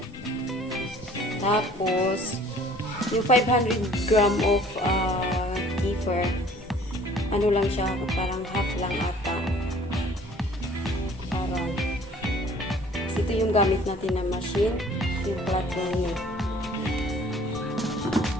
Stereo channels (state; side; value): normal; both; correlation 0.53